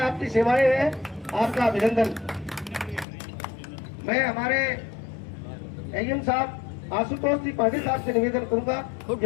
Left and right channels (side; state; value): right; drops out; at 3.1 s